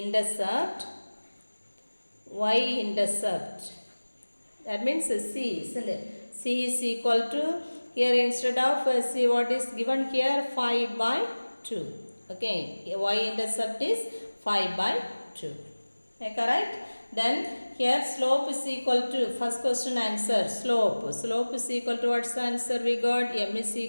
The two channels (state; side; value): inverted; both; correlation -1.00